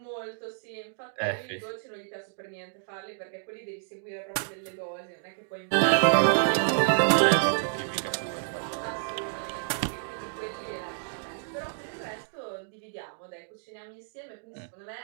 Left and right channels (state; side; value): silent; left; digital silence